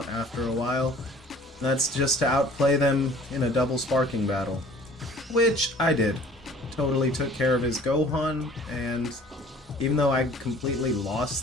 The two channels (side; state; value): both; normal; correlation 0.50